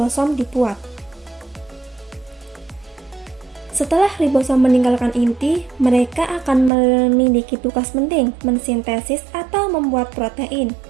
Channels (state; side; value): drops out; left; at 6.7 s